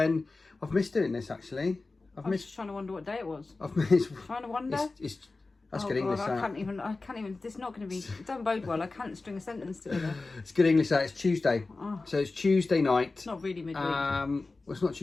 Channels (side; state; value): right; quieter; 3.5 dB